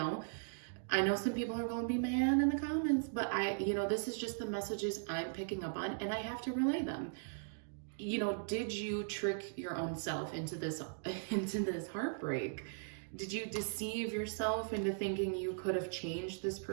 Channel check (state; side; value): silent; left; digital silence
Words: I know some people are going to be mad in the comments, but you know, this is just the messages I'm picking up on, and I have to relay them. You know, did you trick your own self into this heartbreak? Did you deceive yourself into thinking you could have changed this